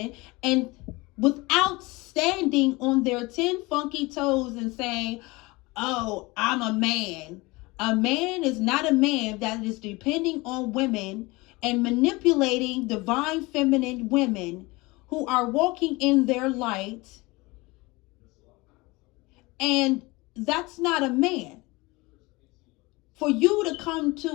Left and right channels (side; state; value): right; quieter; 23.2 dB